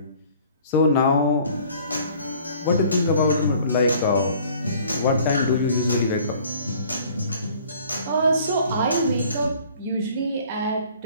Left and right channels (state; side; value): inverted; both; correlation -0.53